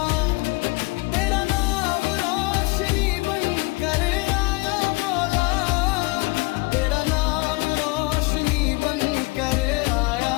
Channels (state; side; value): quieter; right; 25.1 dB